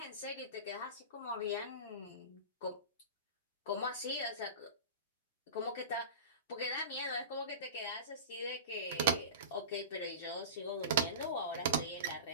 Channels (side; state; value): both; inverted; correlation -0.31